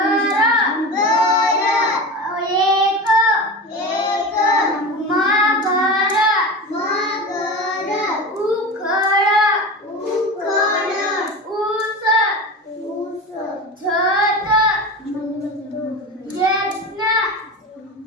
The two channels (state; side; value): normal; both; correlation 0.28